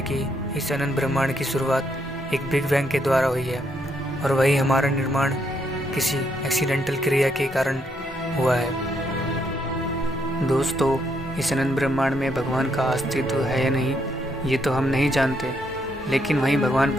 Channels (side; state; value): both; normal; correlation 0.75